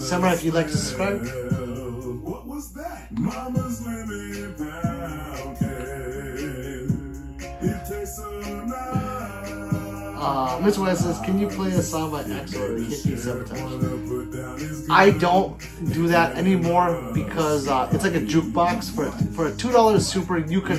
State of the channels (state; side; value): identical; both; correlation 1.00